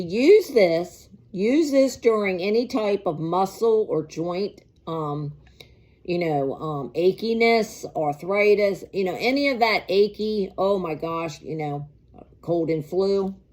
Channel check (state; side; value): identical; both; correlation 1.00